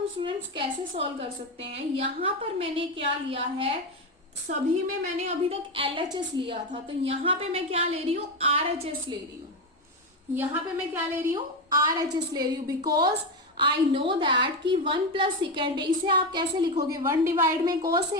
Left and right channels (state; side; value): normal; both; correlation 0.13